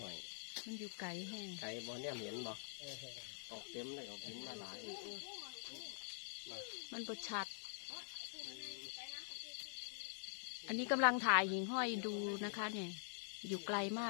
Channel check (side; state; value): right; silent; digital silence